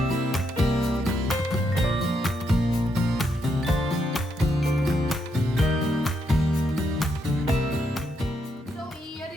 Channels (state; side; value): normal; both; correlation 0.78